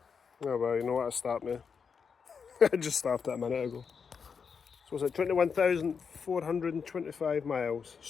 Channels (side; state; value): right; quieter; 6.0 dB